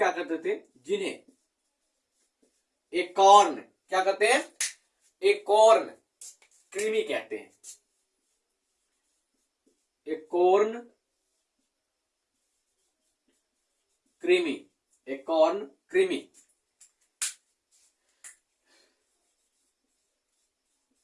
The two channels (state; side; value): identical; both; correlation 1.00